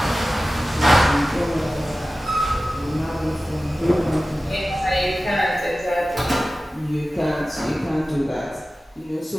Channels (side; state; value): both; normal; correlation 0.96